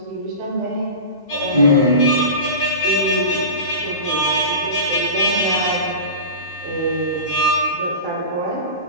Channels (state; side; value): inverted; both; correlation -0.30